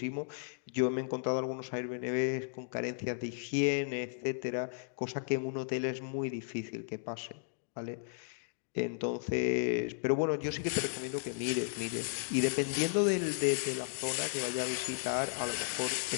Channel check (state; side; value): silent; right; digital silence